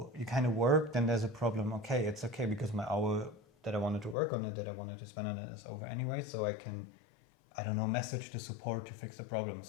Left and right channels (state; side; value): drops out; right; at 4.2 s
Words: you kind of work, then there's a problem. Okay, it's okay, because my hour that I wanted to work on it, that I wanted to spend on it, is over anyway. So I can, I don't know, message the support to fix the problem.